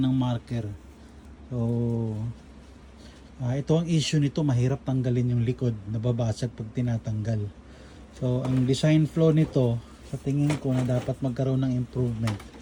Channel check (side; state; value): both; identical; correlation 1.00